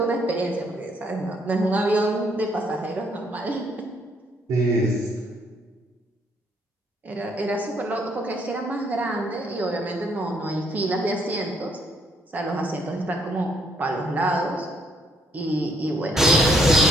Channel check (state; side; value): normal; both; correlation 0.70